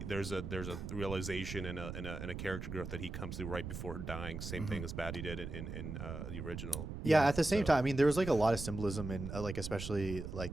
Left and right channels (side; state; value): right; noise; rumble, 7 dB below the sound